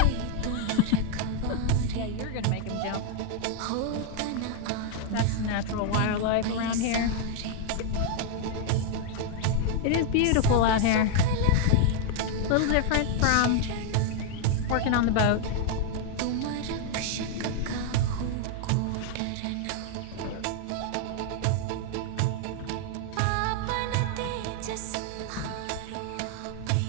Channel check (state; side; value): different; both; correlation 0.00